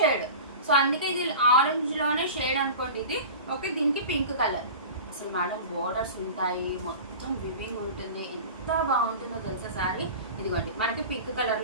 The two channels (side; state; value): both; inverted; correlation -0.34